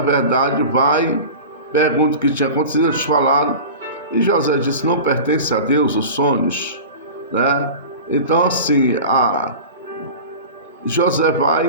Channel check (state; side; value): inverted; both; correlation -0.34